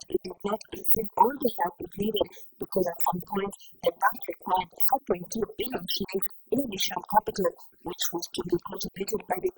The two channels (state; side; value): identical; both; correlation 1.00